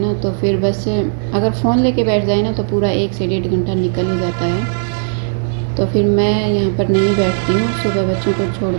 तो फिर बस अगर फ़ोन लेके बैठ जाए ना तो पूरा 1 से 1.5 घंटा निकल ही जाता है। तो फिर मैं यहाँ पर नहीं बैठती हूँ, सुबह बच्चों को छोड़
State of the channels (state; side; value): silent; left; digital silence